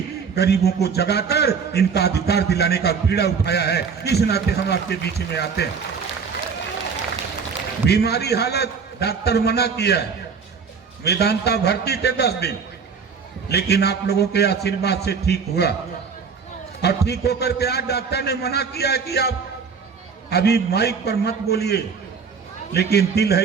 गरीबों को जगाकर इनका अधिकार दिलाने का बीड़ा उठाया है। इस नाते हम आपके बीच में आते हैं। बीमारी हालत डॉक्टर मना किया है, वेदांता भर्ती थे 10 दिन, लेकिन आप लोगों के आशीर्वाद से ठीक हुआ। और ठीक होकर के आज डॉक्टर ने मना किया है कि आप अभी माइक पर मत बोलिए, लेकिन दिल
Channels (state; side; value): quieter; left; 5.8 dB